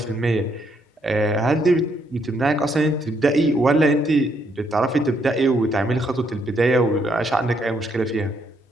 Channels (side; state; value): both; normal; correlation 0.73